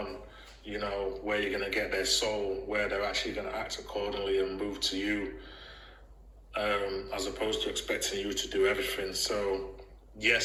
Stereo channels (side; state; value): both; identical; correlation 1.00